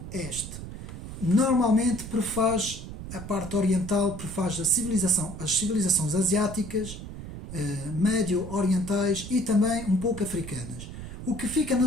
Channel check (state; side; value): noise; right; rumble, 10 dB below the sound